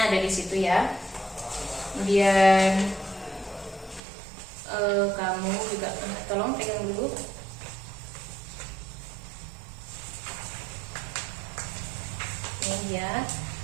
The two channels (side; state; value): left; drops out; at 4.0 s